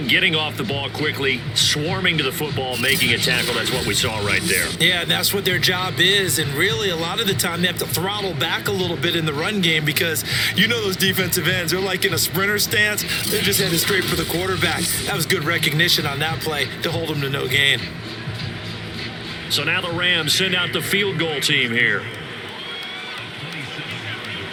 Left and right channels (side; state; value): both; identical; correlation 1.00